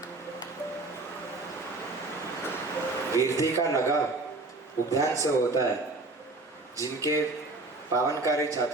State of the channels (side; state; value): left; quieter; 3.2 dB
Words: कीर्ति का लगाव उपध्यान से होता है। जिनके पावनकारी